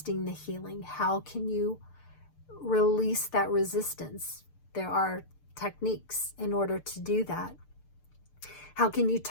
the healing. How can you release that resistance? There are techniques in order to do that. How can you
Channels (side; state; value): right; late; 6.7 ms